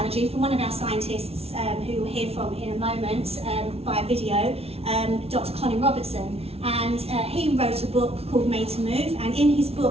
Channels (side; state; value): left; late; 0.30 ms